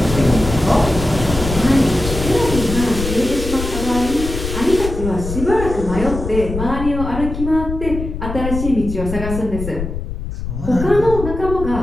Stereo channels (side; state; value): left; noise; rumble, 6 dB below the sound